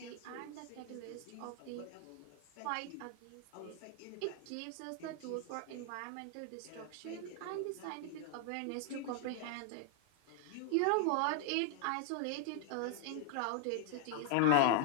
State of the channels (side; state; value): both; different; correlation 0.00